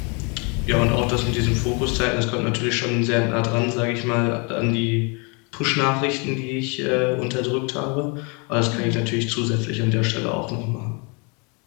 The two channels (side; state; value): right; quieter; 32.7 dB